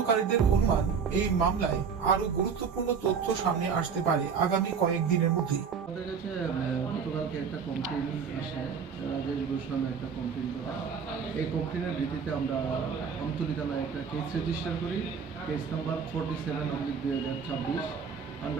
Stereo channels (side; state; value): left; quieter; 6.3 dB